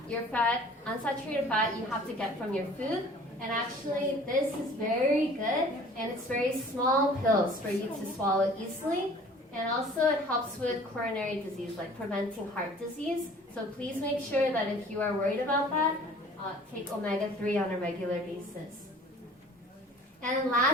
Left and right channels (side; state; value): both; normal; correlation 0.49